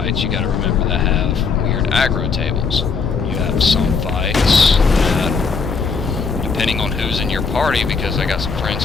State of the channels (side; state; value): right; quieter; 5.1 dB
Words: you gotta remember, that have weird aggro tables. You have some fights that, depending on who's in your party, because I got some friends